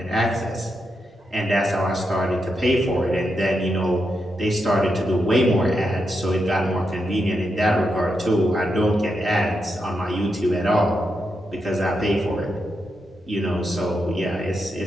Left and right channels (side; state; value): both; normal; correlation 0.84